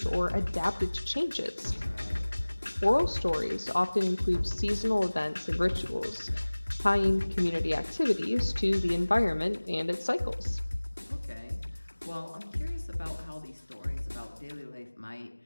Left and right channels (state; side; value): inverted; both; correlation -1.00